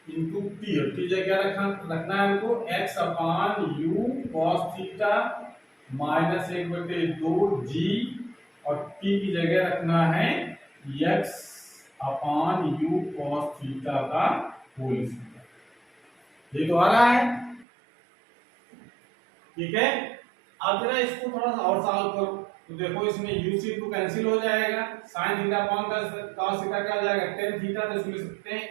into t, t जगह क्या रखना है हमको x upon u cos theta minus 1/2 g, और t की जगह रखना है x upon u cos theta का होल स्क्वायर। ये तो आ रहा है, ठीक है। अब जरा इसको थोड़ा सा और सॉल्व करो तो देखो इसमें u से टू कैंसिल हो जाएगा, sin theta upon cos theta क्या हो जाएगा tan थीटा, तो इसमें लिख सकते हैं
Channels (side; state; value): left; drops out; at 17.7 s